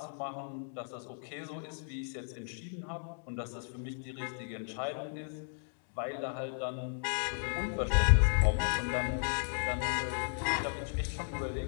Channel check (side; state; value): right; silent; digital silence